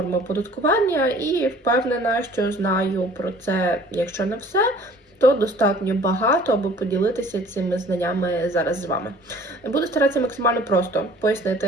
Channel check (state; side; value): normal; both; correlation 0.51